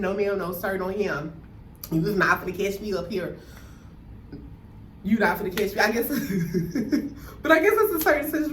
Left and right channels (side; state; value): both; identical; correlation 1.00